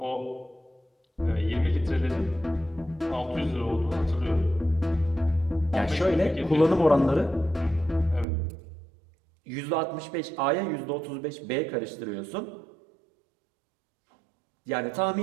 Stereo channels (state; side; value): drops out; left; at 8.2 s